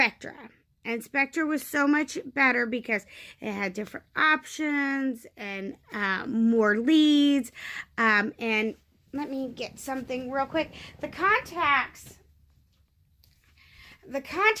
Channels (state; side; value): identical; both; correlation 1.00